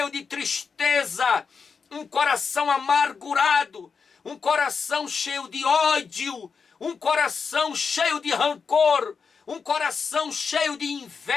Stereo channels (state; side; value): quieter; right; 5.5 dB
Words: de tristeza, um coração amargurado, um coração cheio de ódio, um coração cheio de rancor, um coração cheio de